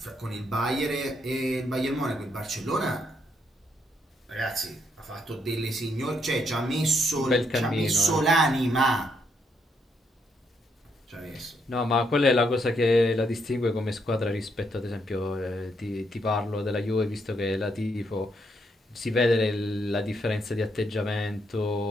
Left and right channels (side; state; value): both; normal; correlation 0.75